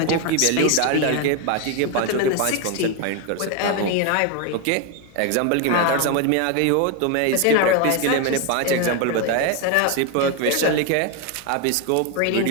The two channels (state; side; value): different; both; correlation 0.02